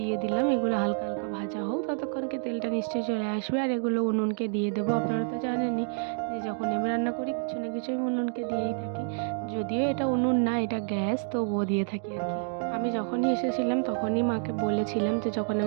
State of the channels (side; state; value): left; silent; 59 dB below the other